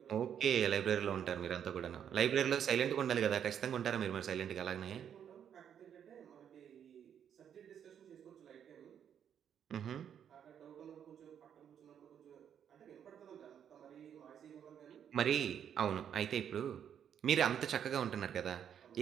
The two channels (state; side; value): quieter; left; 8.8 dB